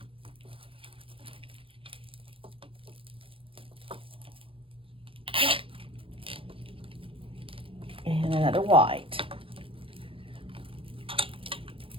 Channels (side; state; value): left; late; 0.26 ms